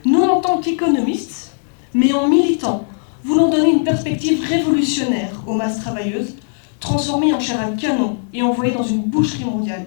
Nous, en tant qu'économistes, mais en militants, voulons donner une perspective révolutionnaire aux masses travailleuses, transformées en chair à canon et envoyées dans une boucherie mondiale.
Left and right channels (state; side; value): silent; right; 61 dB below the other